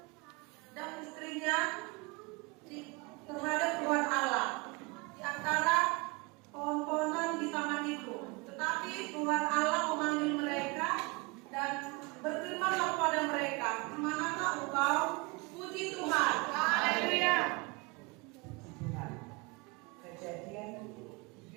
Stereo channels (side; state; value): left; quieter; 27.1 dB